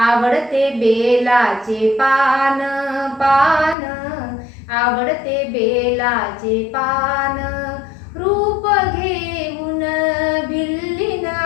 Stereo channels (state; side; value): drops out; right; at 3.8 s